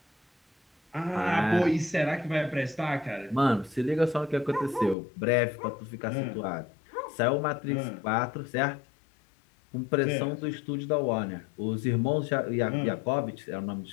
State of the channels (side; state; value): right; drops out; at 5.0 s